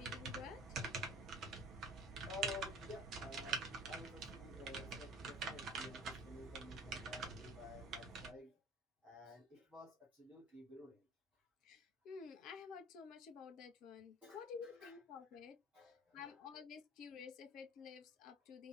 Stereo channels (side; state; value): both; normal; correlation 0.43